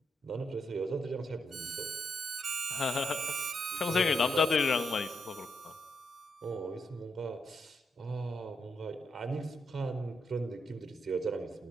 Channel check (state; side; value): normal; both; correlation 0.81